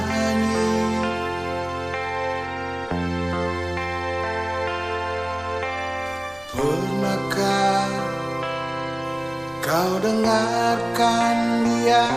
Pernahkah kau dengarkan dia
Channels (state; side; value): noise; left; rumble, 26 dB below the sound